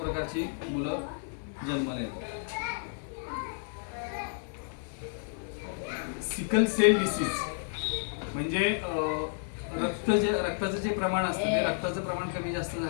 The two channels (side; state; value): right; silent; 57 dB below the other